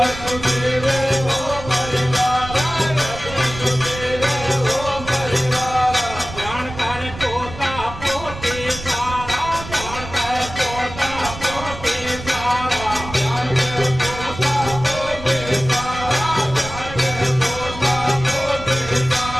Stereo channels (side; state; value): right; noise; rumble, 12 dB below the sound